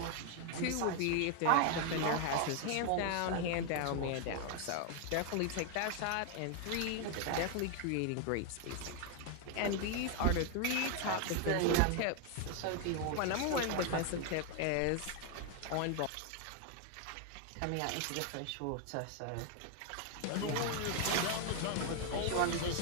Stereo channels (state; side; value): different; both; correlation 0.00